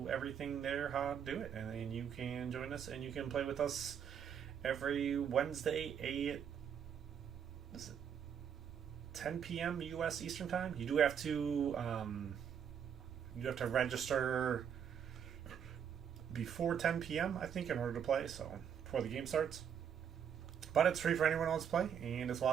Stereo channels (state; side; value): quieter; left; 8.1 dB